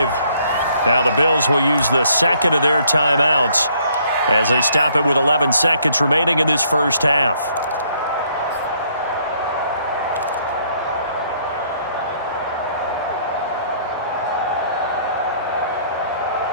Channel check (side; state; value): both; inverted; correlation -0.66